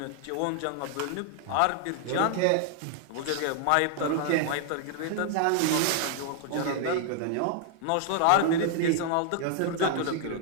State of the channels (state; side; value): different; both; correlation 0.00